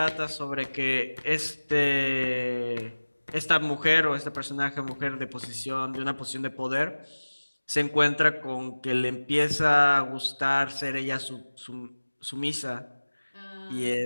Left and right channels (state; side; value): inverted; both; correlation -1.00